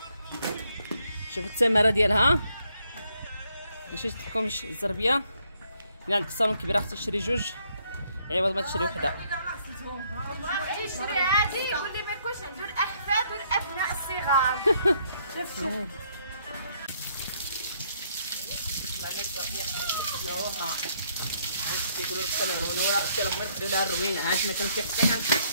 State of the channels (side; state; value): both; inverted; correlation -0.70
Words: شوفوا الثمره ديالها ماشي تلكم الزربيه الا عندك صالون كبير اختي تشري جوج عوض ما تشري وحده. بغيتي تشري هادي يقول لي ما يكونش عنده الاحفاد والابناء الصغار. شوف معنا الزربيه نوها كيقولوا التمرونه ولا اختي لهم ندخلوا لها الروينه. ها انت ما كنتي حتى